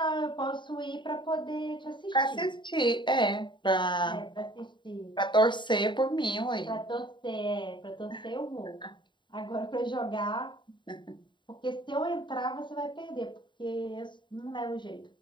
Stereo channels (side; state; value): right; late; 0.23 ms